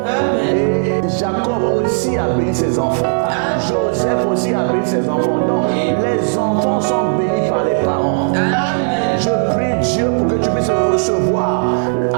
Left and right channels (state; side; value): silent; left; 69 dB below the other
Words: Et Jacob aussi a béni ses enfants. Joseph aussi a béni ses enfants. Donc, les enfants sont bénis par les parents. Je prie Dieu pour que tu puisses recevoir,